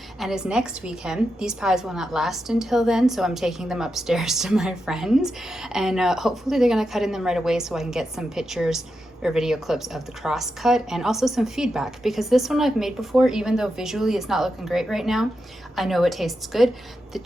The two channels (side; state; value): both; normal; correlation 0.87